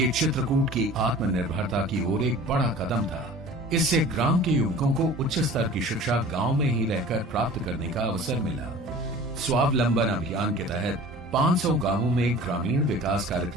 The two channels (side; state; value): both; normal; correlation 0.43